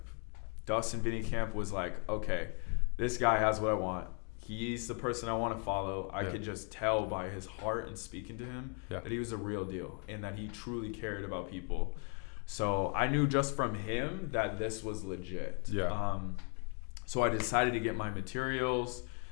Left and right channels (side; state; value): right; quieter; 39.7 dB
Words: Dustin Vinnycamp was like, okay, this guy has what I want. He's the person I want to follow. I could just tell by his heart and speaking to him that he was a real deal and that he truly cared about people. So I knew just from him that this was legit. Yeah. So I decided to get my materials.